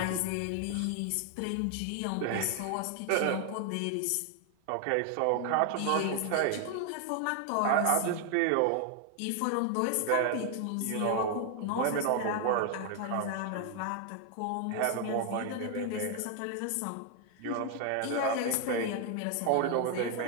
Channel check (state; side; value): different; both; correlation 0.00